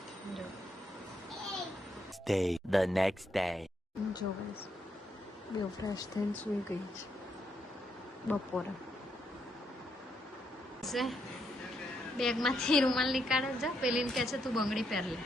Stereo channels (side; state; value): both; normal; correlation 0.78